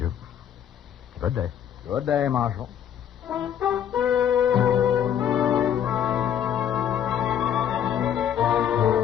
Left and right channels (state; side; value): quieter; right; 9.4 dB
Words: Good day. Good day, Marshal.